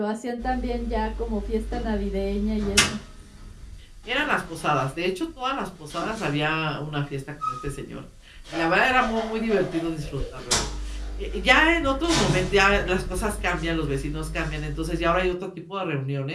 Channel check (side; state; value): both; identical; correlation 1.00